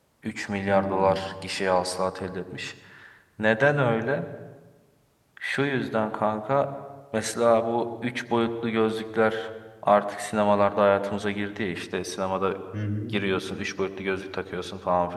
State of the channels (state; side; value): identical; both; correlation 1.00